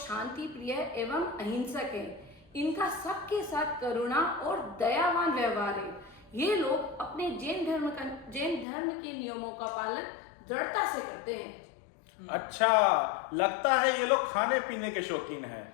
प्रिय एवं अहिंसक हैं। इनका सबके साथ करुणा और दयावान व्यवहार है। ये लोग अपने जैन धर्म के नियमों का पालन दृढ़ता से करते हैं। अच्छा, लगता है ये लोग खाने पीने के शौकीन हैं।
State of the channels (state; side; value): drops out; right; at 8.7 s